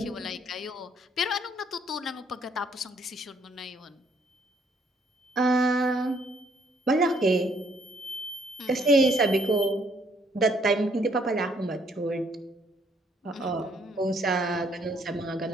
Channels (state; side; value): normal; both; correlation 0.67